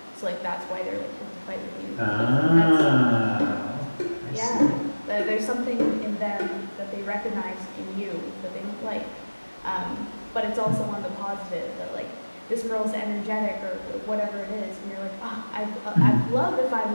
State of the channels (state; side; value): inverted; both; correlation -1.00